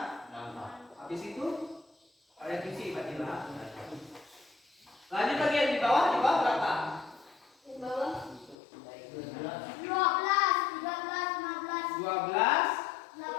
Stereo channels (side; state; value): right; drops out; at 8.6 s